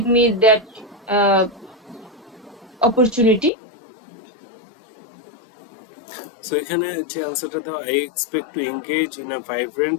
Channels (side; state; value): right; drops out; at 3.5 s